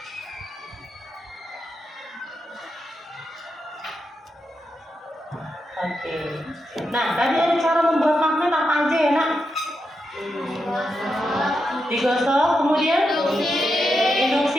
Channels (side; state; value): both; normal; correlation 0.85